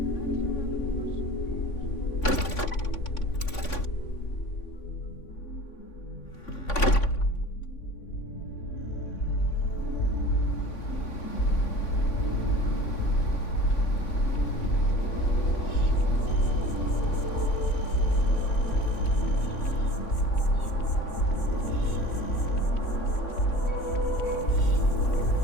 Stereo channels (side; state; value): right; late; 3.5 ms